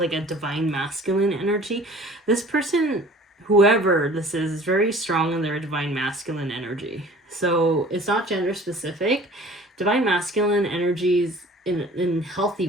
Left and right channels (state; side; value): normal; both; correlation 0.47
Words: a divine masculine energy, this person, whoever this is very strong in their divine masculine energy. So it's not gender specific. Divine masculine energies in healthy